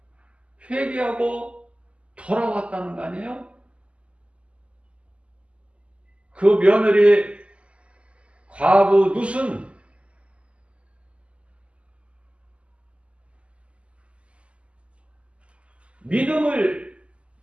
회개하고 돌아왔다는 거 아니에요? 그 며느리 과부 룻은 믿음을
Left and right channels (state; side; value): late; left; 0.058 ms